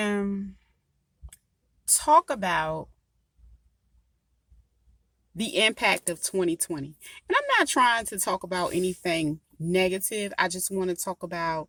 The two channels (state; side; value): identical; both; correlation 1.00